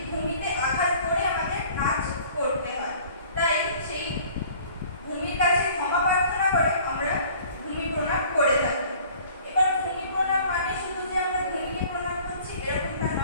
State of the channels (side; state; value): both; inverted; correlation -0.51